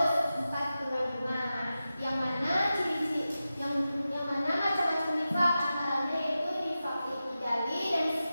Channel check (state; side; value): inverted; both; correlation -0.93